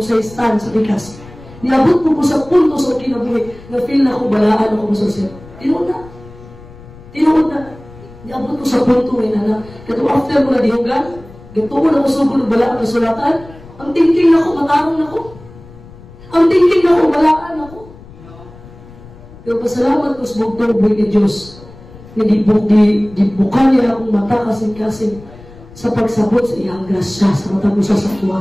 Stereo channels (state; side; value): noise; left; rumble, 20 dB below the sound